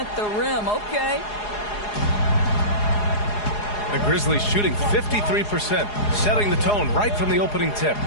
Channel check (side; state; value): right; late; 4.8 ms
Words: the rim. Okay. The Grizzlies shooting 53%, setting the tone right from the opening tip.